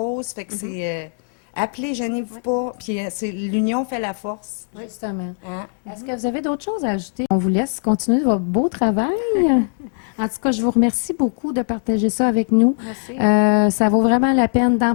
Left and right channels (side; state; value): right; silent; 61 dB below the other